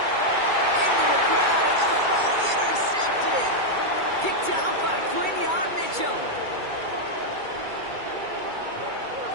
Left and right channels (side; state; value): left; late; 2.3 ms